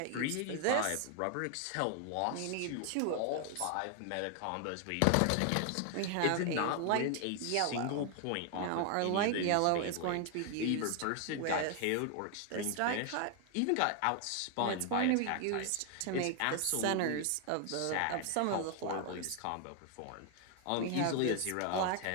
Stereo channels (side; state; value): both; different; correlation 0.00